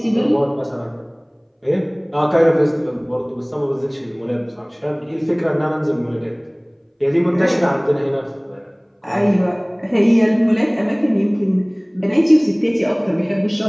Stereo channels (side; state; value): both; identical; correlation 1.00